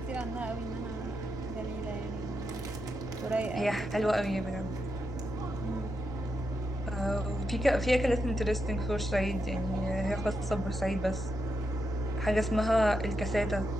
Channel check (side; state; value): right; noise; rumble, 16 dB below the sound